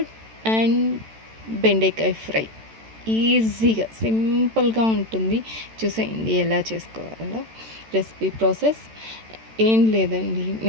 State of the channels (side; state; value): left; late; 13 ms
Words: అండ్ బెండకాయ ఫ్రై. ఈజీగా సింపుల్గా ఉంటుంది. చూసేయండి ఎలా చేసుకోవాలో. రెసిపీ ప్రాసెస్ ఏం లేదండి,